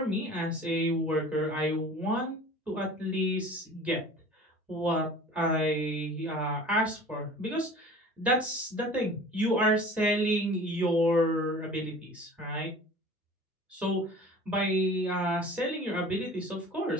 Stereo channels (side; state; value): both; normal; correlation 0.43